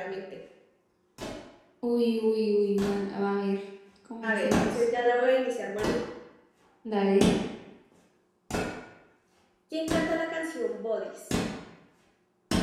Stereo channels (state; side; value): identical; both; correlation 1.00